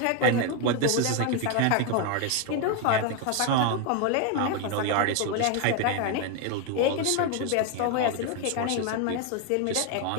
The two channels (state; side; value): different; both; correlation 0.02